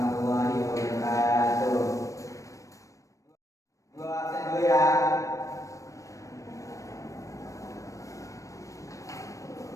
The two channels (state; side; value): late; right; 0.16 ms